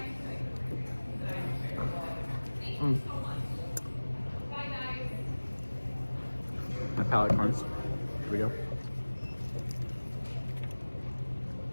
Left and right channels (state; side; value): inverted; both; correlation -1.00